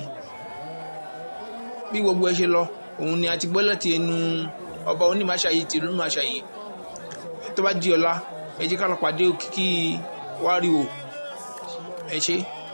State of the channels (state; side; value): inverted; both; correlation -1.00